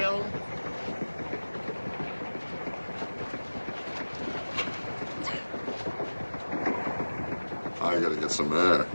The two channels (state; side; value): inverted; both; correlation -1.00